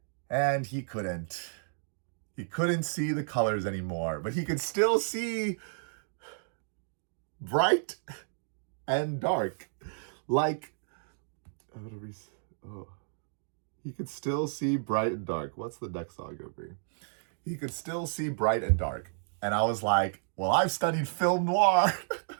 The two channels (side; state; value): left; silent; digital silence